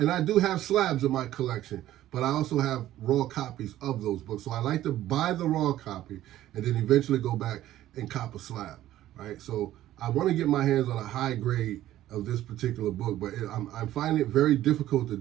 I do have slabs in my collection, but I also have raw copies of those books. So I like to buy the raw copy and then eventually go back and cop a slab, right? So I want to get my hands on a high grade of this particular book, but I'm finding it very difficult to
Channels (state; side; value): quieter; left; 13.7 dB